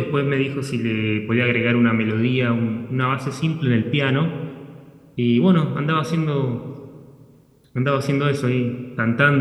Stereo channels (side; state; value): both; identical; correlation 1.00